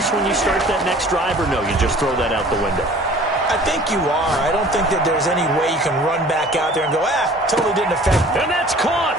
when you start that next drive, or no, you just throw that out the window? I think you are. I don't think that there's any way you can run back out there and go, totally didn't affect. And that's caught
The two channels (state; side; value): normal; both; correlation 0.48